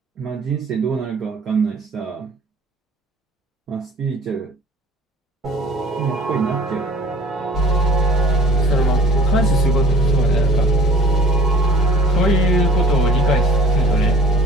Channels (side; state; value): both; normal; correlation 0.47